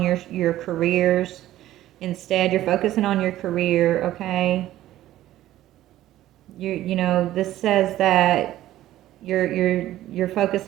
your careers instead. You're focusing on your career, okay? This says that you're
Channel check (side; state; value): left; quieter; 14.1 dB